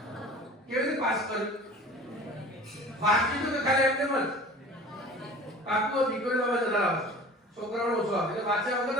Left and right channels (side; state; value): both; normal; correlation 0.42